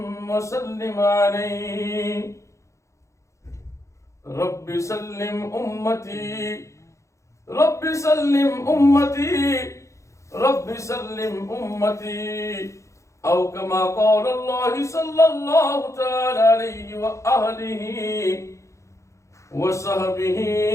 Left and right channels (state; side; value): late; right; 0.15 ms